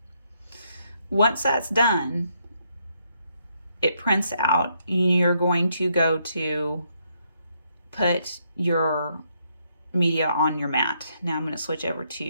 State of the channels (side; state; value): both; inverted; correlation -0.75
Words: Once that's done, it prints out. You're going to go to put your media on your mat. Now I'm going to switch over